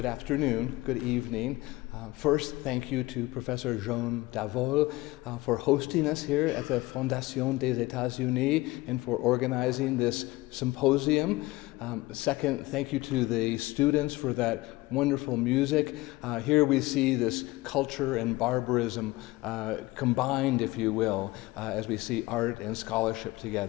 afternoon, good evening. First, thank you to Professor Jean Davol for hosting us here at the Fondation des États-Unis and for organizing this symposium. Second, thank you to the students for that wonderful music. Here we see this culture and barbarism combined, if you will, as we see art and scholarship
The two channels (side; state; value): right; quieter; 20.3 dB